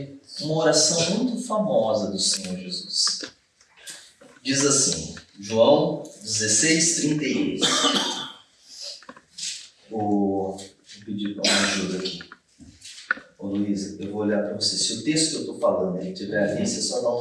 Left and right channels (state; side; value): identical; both; correlation 1.00